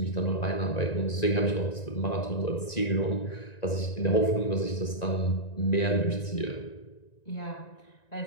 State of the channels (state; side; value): late; right; 1.9 ms